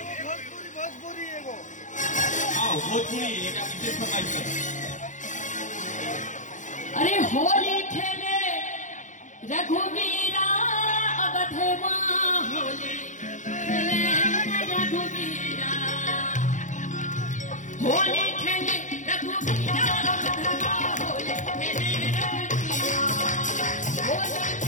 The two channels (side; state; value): right; late; 0.36 ms